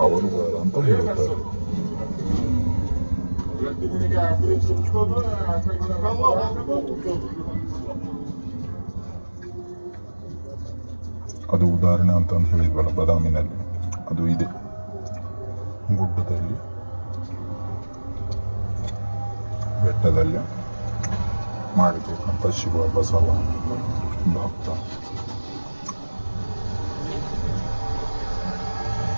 ಅಂತ ಹೇಳುತ್ತಾರೆ. ಅದು ಉದಾಹರಣೆ ಅಂತ ಹೇಳಿದ್ವಲ್ಲ ಬಾದಾಮಿನಲ್ಲಿ, ಅದು ಇದೆ ಗುಡ್ಡದಲ್ಲಿ ಬೆಟ್ಟದಲ್ಲಿ ಮಾಡಿರ್ತಕ್ಕಂಥ ಶಿವ ಬಸವ ಭಕ್ತ.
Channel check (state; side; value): inverted; both; correlation -1.00